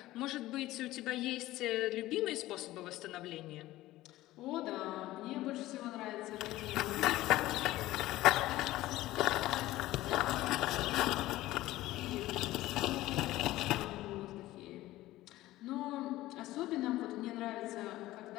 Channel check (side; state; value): right; quieter; 16.5 dB